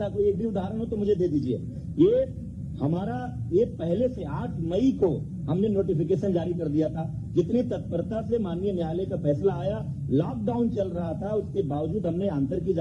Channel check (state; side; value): identical; both; correlation 1.00